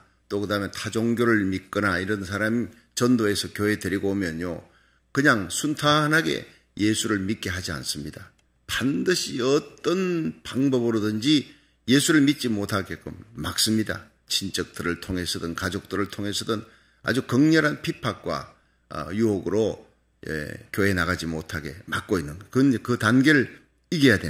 또 그 다음에 타종교를 믿거나 이런 사람 전도해서 교회 데리고 오면요, 그냥 순탄하게 예수를 믿게 하지 않습니다. 반드시 어떤 방법으로든지 예수를 믿지 못하게끔 막습니다. 친척들을 통해서든 가족들을 통해서든 아주 극렬한 핍박과 유혹으로 교회 나가지 못하게 막고 있는, 그 단계를 이겨야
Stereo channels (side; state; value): both; identical; correlation 1.00